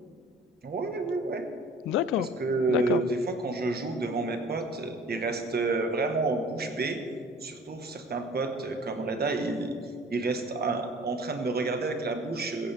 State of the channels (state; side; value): normal; both; correlation 0.48